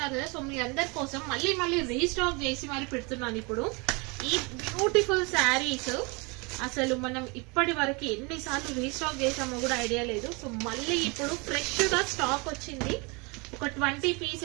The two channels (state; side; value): quieter; left; 29.2 dB